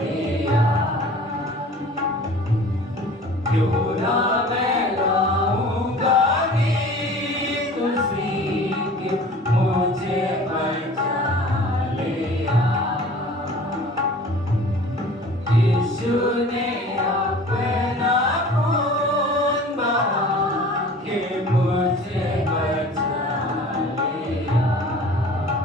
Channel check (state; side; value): normal; both; correlation 0.44